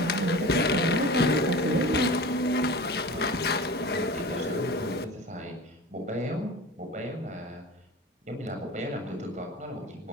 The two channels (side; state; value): both; normal; correlation 0.35